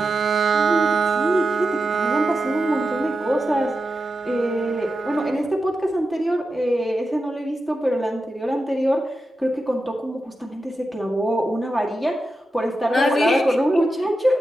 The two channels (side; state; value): both; normal; correlation 0.90